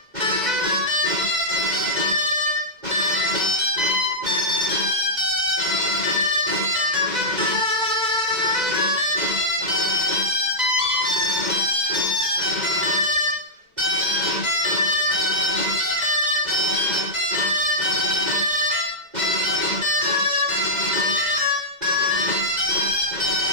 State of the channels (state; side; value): late; left; 2.0 ms